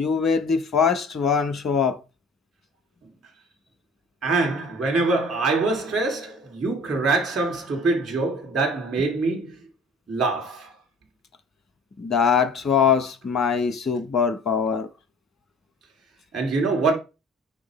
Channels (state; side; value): normal; both; correlation 0.46